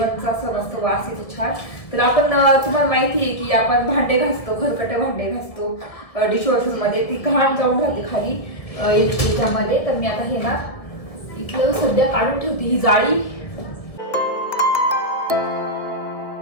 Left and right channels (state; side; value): late; right; 1.7 ms